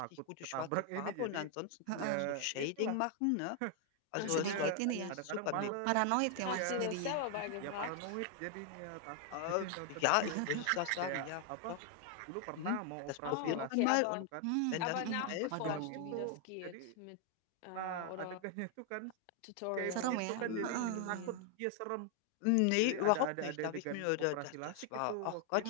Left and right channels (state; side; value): different; both; correlation 0.00